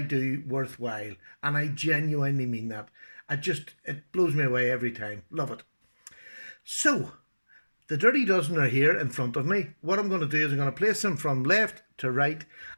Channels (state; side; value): inverted; both; correlation -1.00